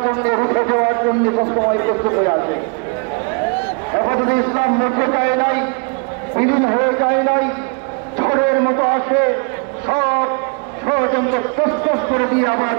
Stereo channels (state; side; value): quieter; left; 36.2 dB